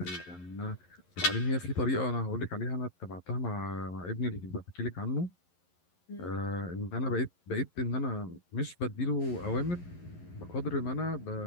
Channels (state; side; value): late; right; 11 ms